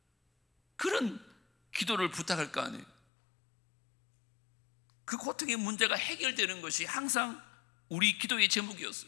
그런 기도를 부탁할 거 아니에요. 그 고통의 문제가 해결되는 것이 항상 우리 기도의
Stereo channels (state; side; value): drops out; right; at 2.9 s